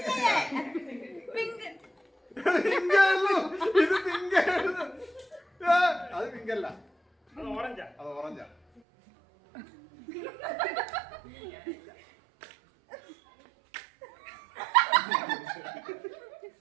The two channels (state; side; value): drops out; left; at 8.8 s